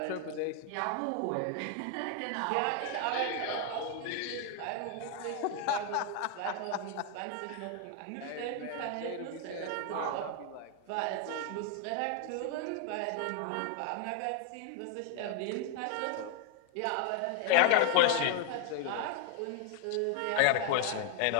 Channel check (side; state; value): both; different; correlation 0.00